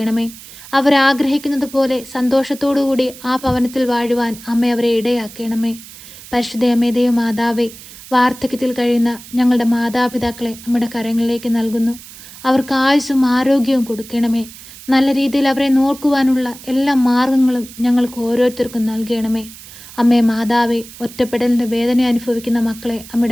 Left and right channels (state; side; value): noise; right; hiss, 17 dB below the sound